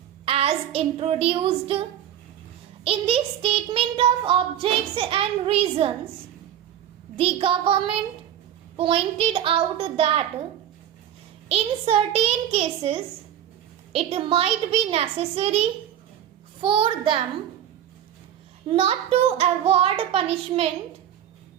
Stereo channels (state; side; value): quieter; left; 10.6 dB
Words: as introduced. In the Statement of Objects and Reasons, the government pointed out that in certain cases it might be necessary for them not to award punishment